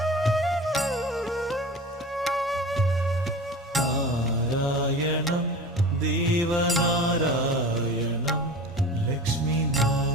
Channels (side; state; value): both; normal; correlation 0.36